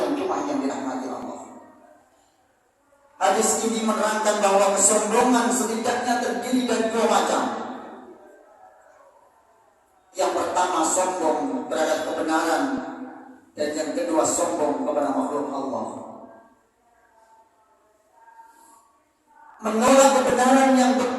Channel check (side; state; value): both; identical; correlation 1.00